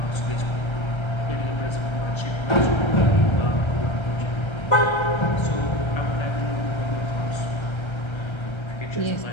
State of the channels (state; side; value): late; right; 1.3 ms